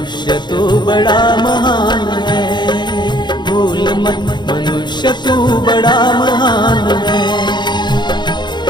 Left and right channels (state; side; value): late; right; 0.21 ms